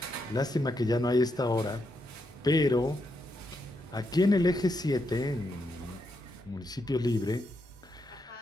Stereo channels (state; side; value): normal; both; correlation 0.81